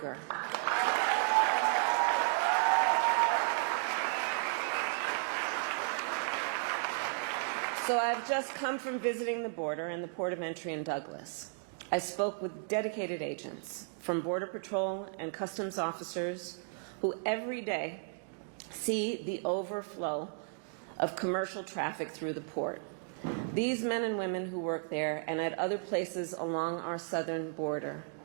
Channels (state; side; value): silent; left; 55 dB below the other